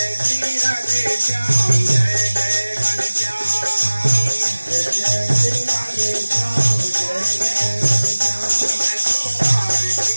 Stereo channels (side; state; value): both; inverted; correlation -1.00